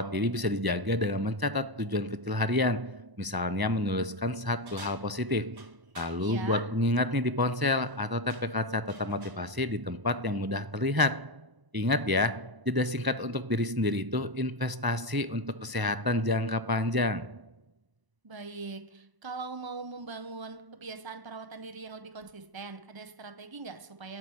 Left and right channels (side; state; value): left; late; 1.0 ms